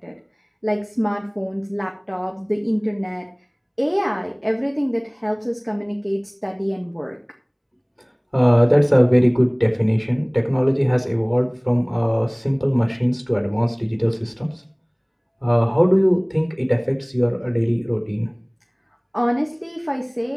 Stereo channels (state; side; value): identical; both; correlation 1.00